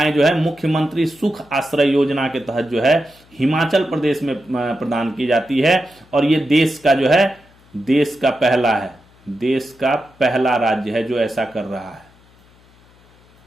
जो है मुख्यमंत्री सुख आश्रय योजना के तहत जो है हिमाचल प्रदेश में प्रदान की जाती है। और ये देश का जो है देश का पहला है, देश का पहला राज्य है जो ऐसा कर रहा है,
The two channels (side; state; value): left; noise; hum, 29 dB below the sound